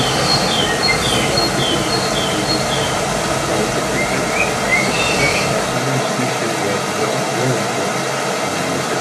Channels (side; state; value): both; identical; correlation 1.00